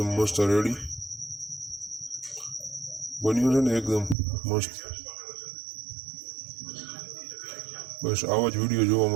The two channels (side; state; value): left; drops out; at 4.2 s